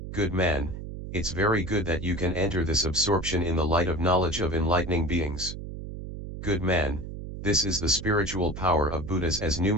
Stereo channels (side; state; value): right; noise; hum, 9 dB below the sound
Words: Good man, it's very good that you can enter this absorption in the light of knowledge of enlightening beings. Good man, this is the spiritual power of Buddhas as